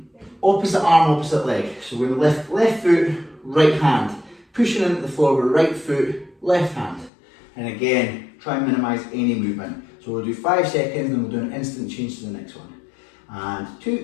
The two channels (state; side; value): drops out; right; at 7.1 s